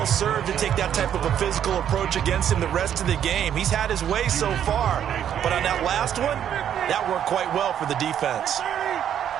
served to take that type of a physical approach against him the rest of the game. He's had his way so far. But on that last one, that worked quite well for the defense.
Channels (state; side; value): quieter; left; 9.7 dB